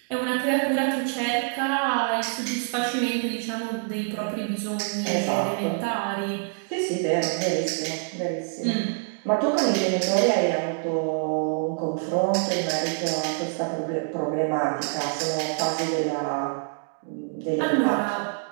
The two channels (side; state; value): left; silent; 61 dB below the other